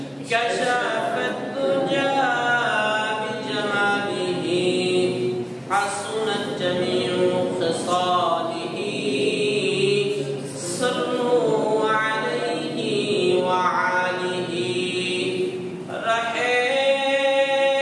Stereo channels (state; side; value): identical; both; correlation 1.00